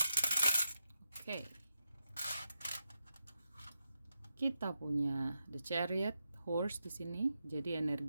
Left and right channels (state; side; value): inverted; both; correlation -0.86